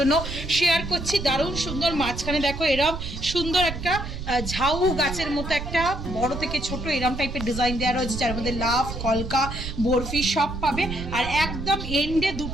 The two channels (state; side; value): noise; right; rumble, 7 dB below the sound